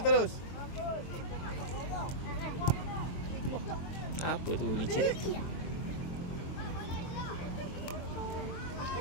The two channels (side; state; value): right; late; 23 ms